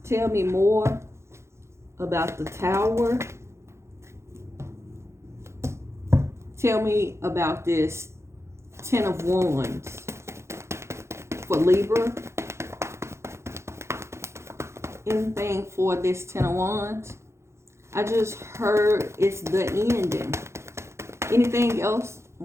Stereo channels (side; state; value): left; late; 0.13 ms